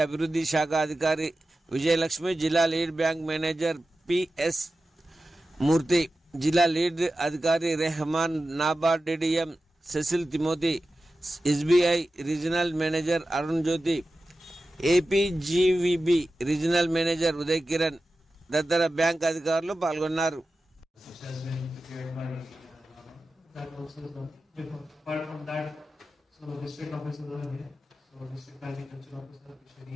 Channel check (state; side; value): normal; both; correlation 0.93